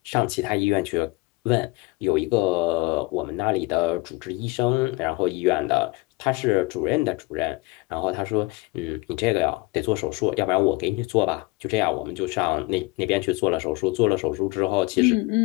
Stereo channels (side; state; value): right; quieter; 23.3 dB